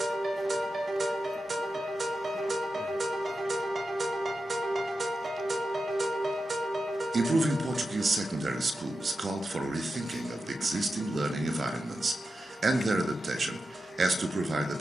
Improving Portuguese secondary schools called for a rethinking of the existing learning environments and their adaptation as to provide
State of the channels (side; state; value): both; normal; correlation 0.90